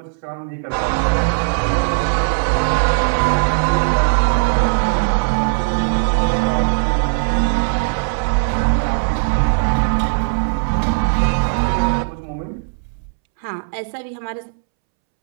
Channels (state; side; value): silent; left; 67 dB below the other